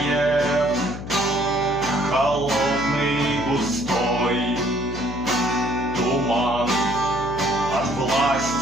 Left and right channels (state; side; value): noise; left; hum, 10 dB below the sound